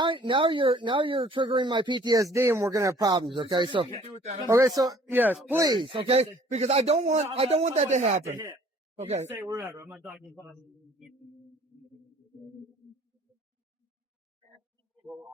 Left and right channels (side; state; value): both; normal; correlation 0.55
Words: triggering my PTSD, and we're gonna have problems. Okay, so yes, please, okay, because I don't want that to happen. Okay. Say wherever. I'm not talking about.